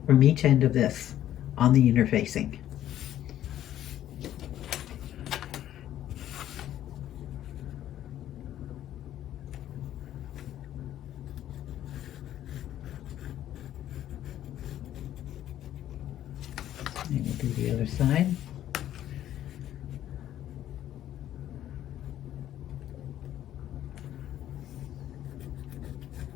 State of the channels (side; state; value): right; quieter; 12.1 dB